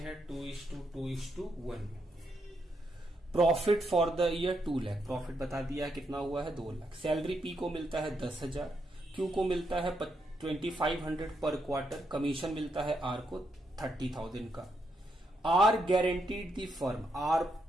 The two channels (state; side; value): normal; both; correlation 0.80